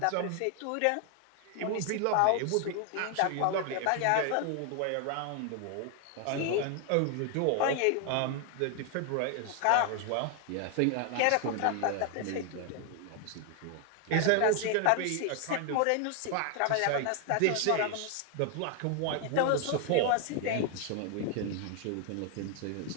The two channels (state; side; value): different; both; correlation 0.00